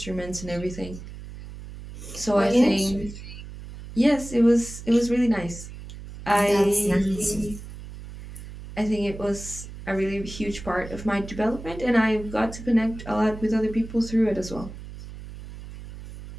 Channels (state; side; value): noise; right; hum, 13 dB below the sound